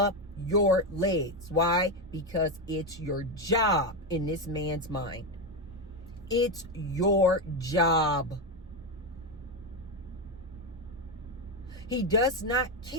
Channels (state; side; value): normal; both; correlation 0.10